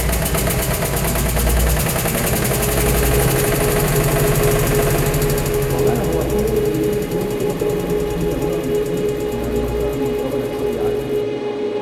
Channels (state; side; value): identical; both; correlation 1.00